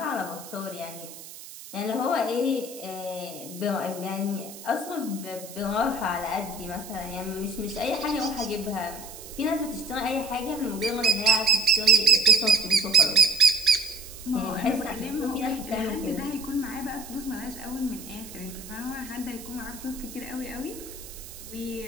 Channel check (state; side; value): noise; right; hiss, 15 dB below the sound